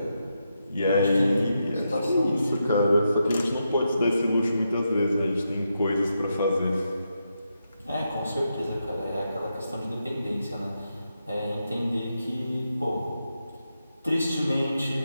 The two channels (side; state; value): both; inverted; correlation -0.85